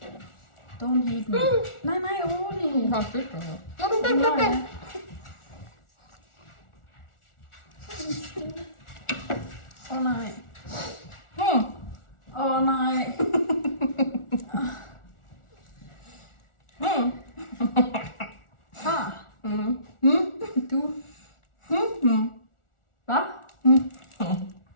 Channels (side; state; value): right; late; 1.4 ms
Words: Don't hate me. Nej, rolig. Har stødt mig. Nej. Nej. Nej. Du. Hvad?